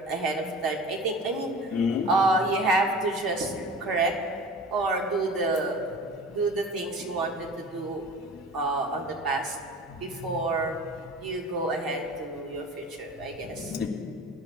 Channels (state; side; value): normal; both; correlation 0.38